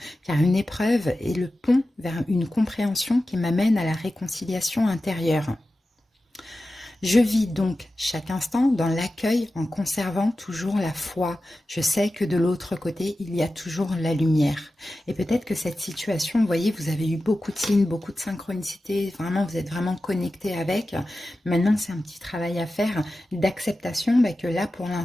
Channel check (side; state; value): both; normal; correlation 0.94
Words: car une épreuve est le pont vers une compréhension qui m'amène à la réconciliation intérieure. Je vis donc chaque instant dans l'accueil en conservant toujours la foi. Je sais que de l'autre côté, il y a toujours la lumière. Et peut-être que cette situation, vous voyez, vous avez eu beaucoup de signes, beaucoup de synchronicité, vraiment, vous êtes vraiment connecté avec. Maintenant, c'est un petit travail à faire d'acceptation que là, pour